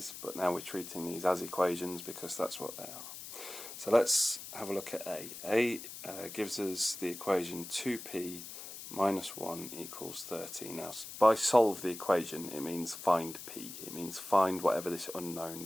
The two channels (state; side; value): noise; left; hiss, 11 dB below the sound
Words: but now we're treating these as equations because that's what they are. So let's have a look at A. A gives us the equation 2p minus 1 equals 30. Now, by solve the equation, it means find p. It means find whatever this unknown